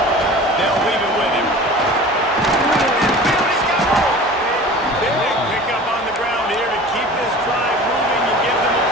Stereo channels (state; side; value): normal; both; correlation 0.39